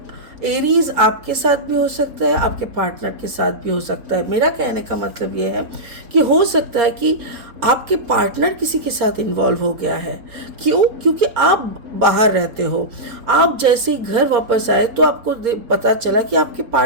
एरीज आपके साथ भी हो सकता है, आपके पार्टनर के साथ भी हो सकता है। मेरा कहने का मतलब ये है कि हो सकता है कि आपके पार्टनर किसी के साथ इन्वॉल्व हो गया है। क्यों? क्योंकि आप बाहर रहते हो, आप जैसे ही घर वापस आए तो आपको पता चला कि आपके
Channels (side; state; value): left; late; 4.3 ms